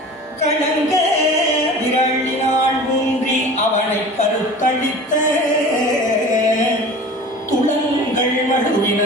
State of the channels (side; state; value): both; normal; correlation 0.39